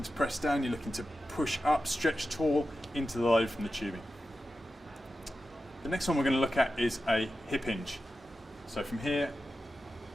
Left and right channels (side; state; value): both; normal; correlation 0.92